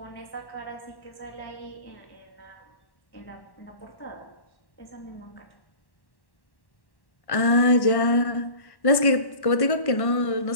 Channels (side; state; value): right; late; 1.1 ms